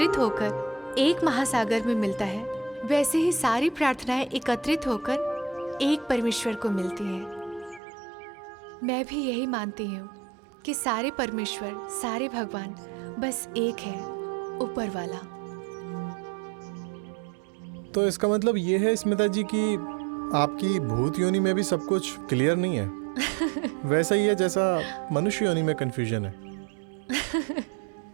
होकर एक महासागर में मिलता है, वैसे ही सारी प्रार्थनाएं एकत्रित होकर एक परमेश्वर को मिलती हैं। मैं भी यही मानती हूँ कि सारे परमेश्वर, सारे भगवान बस एक है, ऊपर वाला। तो इसका मतलब ये है स्मिता जी कि आपकी भूत योनि में भी सब कुछ क्लियर नहीं है। वैसा ही है जैसा मनुष्य योनि में कंफ्यूजन है।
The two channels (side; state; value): left; drops out; at 7.8 s